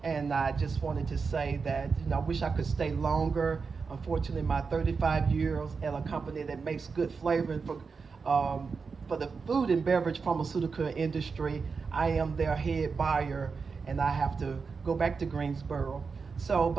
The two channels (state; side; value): quieter; left; 5.1 dB